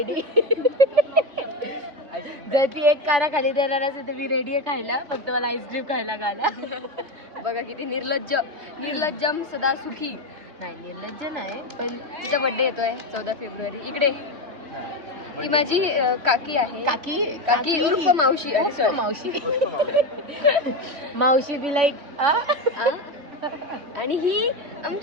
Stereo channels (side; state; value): left; late; 3.2 ms